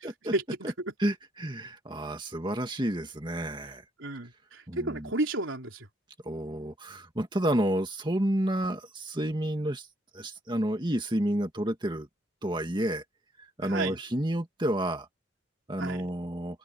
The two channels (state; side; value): normal; both; correlation 0.70